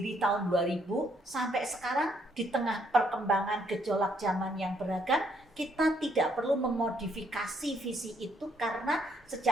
tahun 2000 sampai sekarang di tengah perkembangan gejolak zaman yang beragam, kita tidak perlu memodifikasi visi itu karena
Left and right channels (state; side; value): normal; both; correlation 0.70